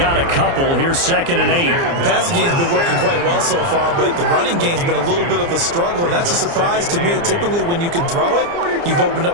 a couple. Here's 2nd and 8. The passing game's been working quite well so far, but the running game's been a little bit of a struggle, and that's a surprise to me. Typically, when you can throw it, you've opened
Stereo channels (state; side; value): late; left; 29 ms